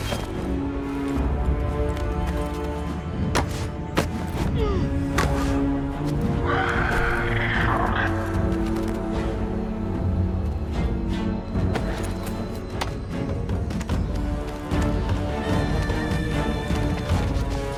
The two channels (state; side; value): identical; both; correlation 1.00